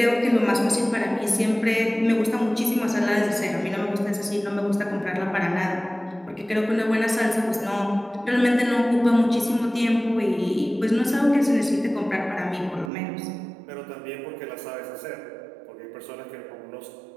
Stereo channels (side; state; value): left; drops out; at 12.9 s